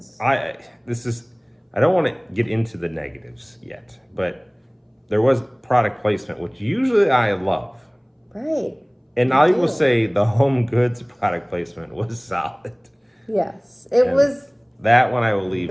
I don't want to get into the negatives yet, but there was product placement, which usually I love. Right. And I will say the Home Goods product placement was solid. Yes, it was. That one I will leave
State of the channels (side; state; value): both; identical; correlation 1.00